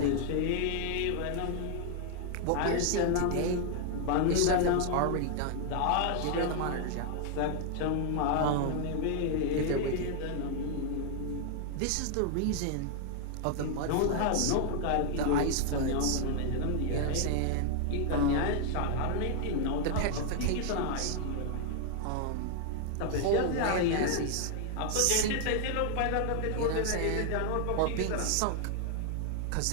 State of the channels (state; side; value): different; both; correlation 0.00